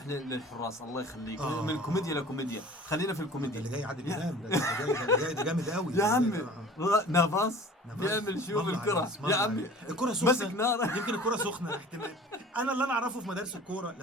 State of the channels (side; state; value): both; normal; correlation 0.44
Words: للحراس الله يخليك. من كوميديا لكوميديا، خلينا في الكوميديا. اللي جاي عادل امام ده جامد قوي يا عمي. نافاس بيعمل شو بالكره يا عمي، الكره سخنه مسك نار. يمكن الكره سخنه احتمال. انا اللي اعرفه في مدارس الكوره،